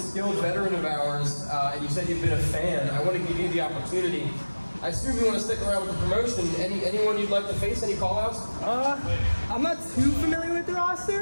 veteran of ours, and you said you've been a fan, I want to give you the opportunity. I assume you want to stick around with the promotion. Anyone you'd like to face? Any call-outs? I'm not too familiar with the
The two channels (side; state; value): both; inverted; correlation -1.00